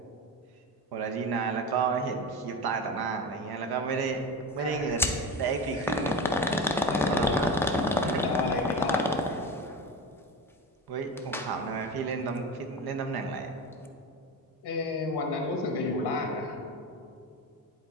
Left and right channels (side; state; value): both; normal; correlation 0.25